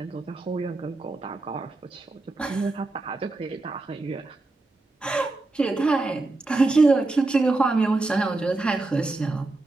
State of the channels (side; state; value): left; quieter; 3.2 dB